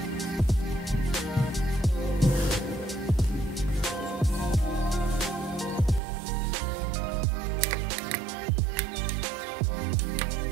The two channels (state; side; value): drops out; left; at 6.0 s